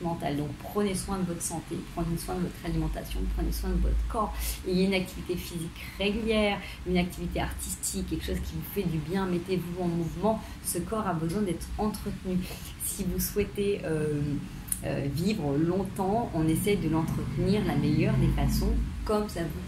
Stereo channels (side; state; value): both; identical; correlation 1.00